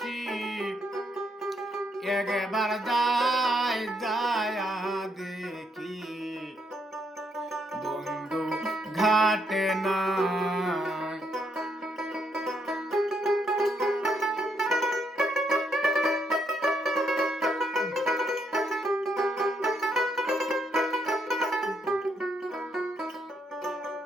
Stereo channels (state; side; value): normal; both; correlation 0.75